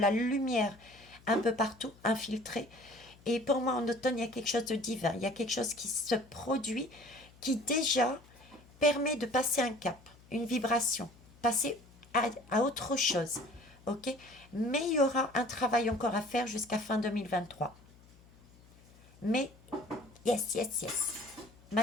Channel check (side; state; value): left; noise; hum, 25 dB below the sound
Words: lumière un peu partout, infiltrée. Et pour moi, en automne, il y a quelque chose de divin. Il y a quelque chose qui se produit, qui déjà permet de passer un cap, une vibration, passer à autre chose. Ok? Mais il y aura un travail encore à faire jusqu'à fin 2023. Mais, yes, yes, yes.